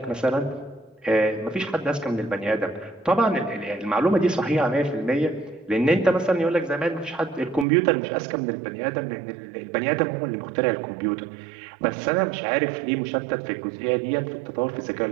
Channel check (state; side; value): drops out; left; at 7.7 s